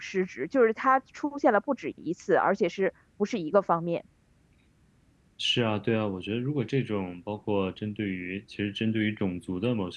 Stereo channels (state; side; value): identical; both; correlation 1.00